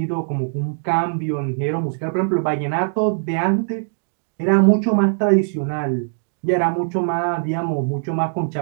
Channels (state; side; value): silent; left; digital silence